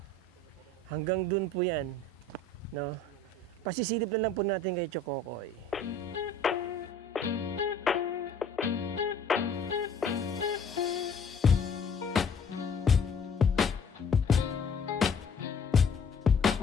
Hanggang dun po yan. No? Pasisilip na lang po natin kay Chokokoy.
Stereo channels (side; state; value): right; quieter; 3.2 dB